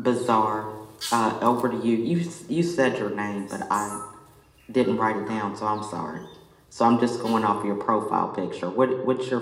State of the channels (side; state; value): both; identical; correlation 1.00